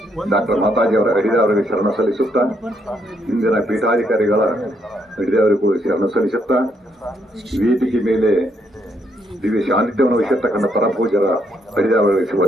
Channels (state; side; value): normal; both; correlation 0.74